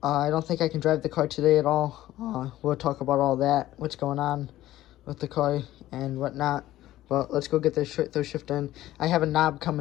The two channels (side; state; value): right; quieter; 14.8 dB